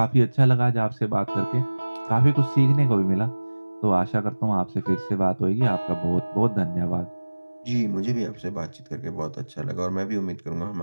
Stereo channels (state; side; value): inverted; both; correlation -1.00